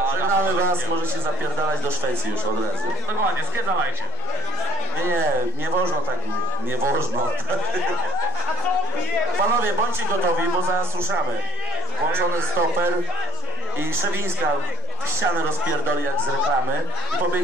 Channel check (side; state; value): both; normal; correlation 0.26